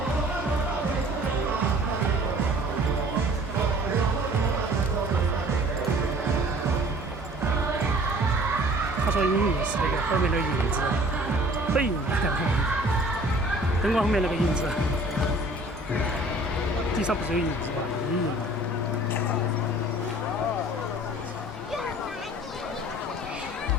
说影印是那个后面那个印子，背影，灯光后面那个印子，地上不是有印子吗？影印。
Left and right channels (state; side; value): normal; both; correlation 0.50